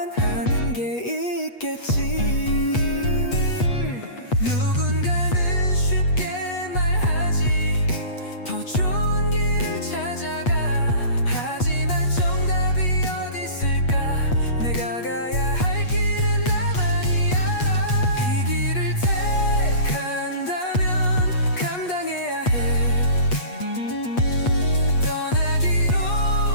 하는 게 있겠지. 누군가는 쉽게 말하지, 더 좋은 길을 찾아가. 하지만 정답이 어디 있을까? 내가 가야 할 길은 나만이 알아. 이 길을 택한다면 감당해야 해. 떠나기로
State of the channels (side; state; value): right; late; 8.3 ms